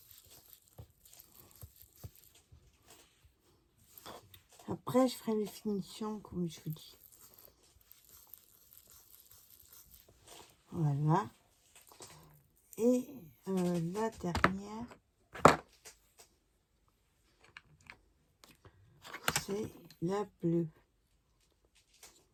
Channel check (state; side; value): identical; both; correlation 1.00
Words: où. Après, je ferai les finitions comme je vous dis. Voilà. Et la dernière, c'est la bleue.